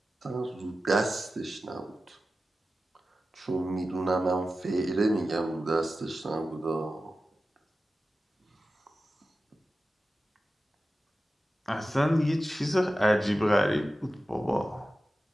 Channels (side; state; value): both; normal; correlation 0.94